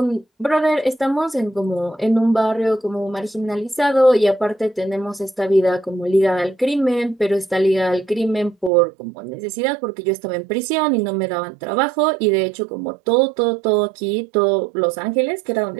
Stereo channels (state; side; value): drops out; left; at 8.7 s